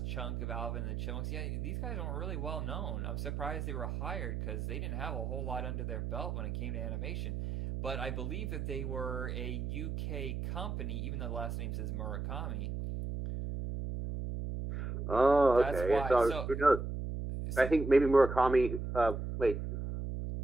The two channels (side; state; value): right; noise; hum, 3 dB below the sound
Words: chunk of Alvin and the Chipmunks. Yeah, these guys aren't really well known. I'm surprised they were hired because they didn't have a whole lot under their belt when it came to animation. But I believe that they were a UK company, even though the last name says Murakami. Oh, okay. So who knows? I think maybe Murakami. Wait,